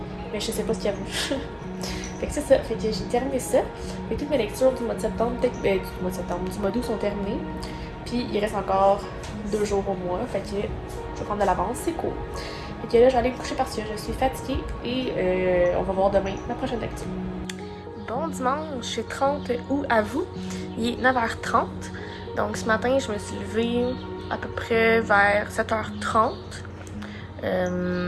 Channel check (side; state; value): both; identical; correlation 1.00